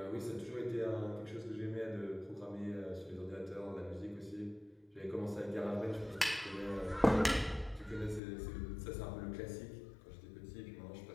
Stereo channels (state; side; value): drops out; right; at 8.2 s